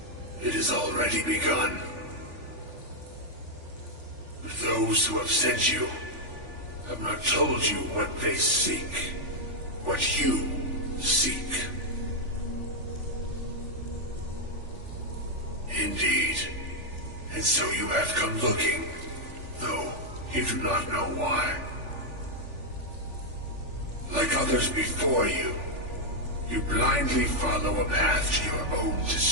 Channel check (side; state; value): left; late; 3.4 ms